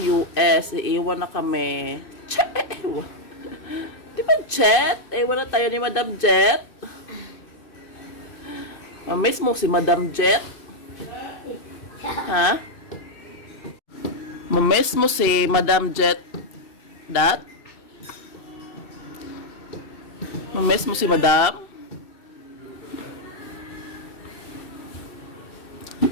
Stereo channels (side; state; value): right; late; 2.5 ms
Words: US, iiwan na kami. Di ba Jet? Iwan na tayo ni Madam Jet. Mamiss mo si Madam Jet? Ha? Mamiss mo si Madam Jet? Dat? Mamiss mo si Madam?